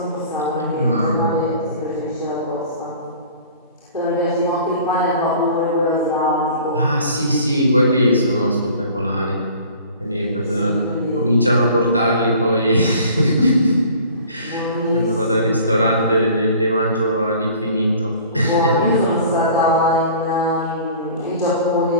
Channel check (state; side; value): inverted; both; correlation -0.47